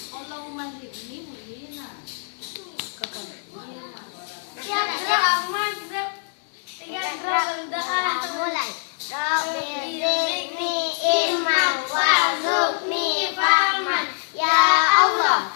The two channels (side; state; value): right; silent; digital silence